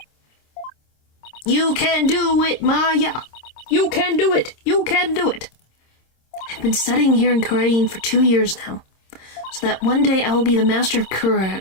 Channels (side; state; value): right; late; 26 ms